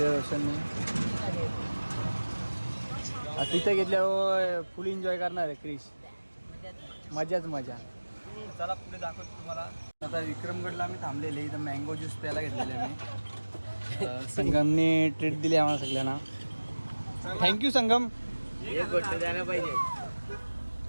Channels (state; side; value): inverted; both; correlation -1.00